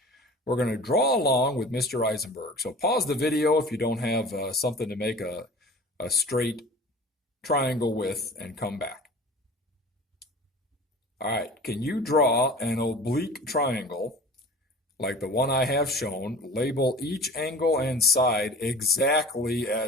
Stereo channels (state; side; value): normal; both; correlation 0.40